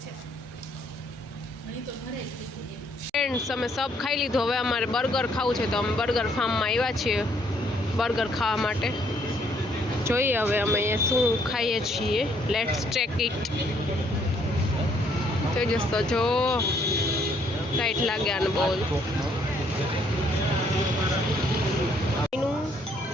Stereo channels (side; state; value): both; normal; correlation 0.68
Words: ફ્રેન્ડ્સ અમે સબ ખાઈ લીધું. હવે અમારે બર્ગર ખાવું છે તો અમે બર્ગર ફાર્મમાં આવ્યા છીએ બર્ગર ખાવા માટે. જોઈએ હવે અમે અહીંયા શું ખાઈએ છીએ. Let's check it. તેજસ તો જો ટાઈટ લાગ્યા ને બહુ.